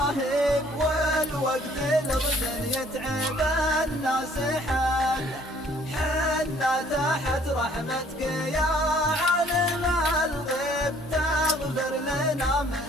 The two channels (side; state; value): both; normal; correlation 0.59